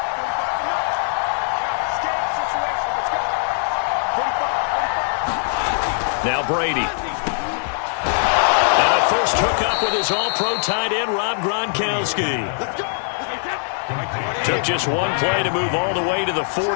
Now Brady. And a first hookup with his all-pro tight end, Rob Gronkowski. Took just one play to move all the way to the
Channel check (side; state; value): right; silent; 61 dB below the other